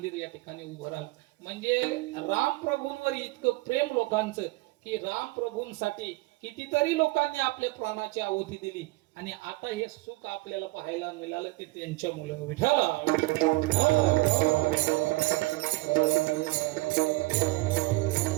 या ठिकाणी उभं राहिलं. म्हणजे राम प्रभूंवर इतकं प्रेम लोकांचं की राम प्रभूंसाठी कितीतरी लोकांनी आपल्या प्राणाची आहुती दिली आणि आता हे सुख आपल्याला पाहायला मिळालं ते त्यांच्या मुलं विठाला.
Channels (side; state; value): left; quieter; 22.2 dB